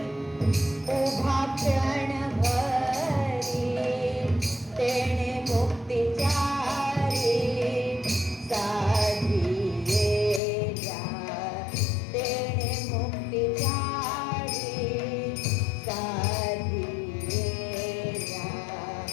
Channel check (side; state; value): right; drops out; at 10.4 s